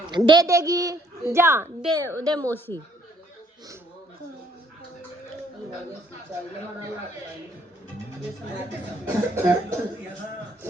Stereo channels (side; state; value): both; normal; correlation 0.66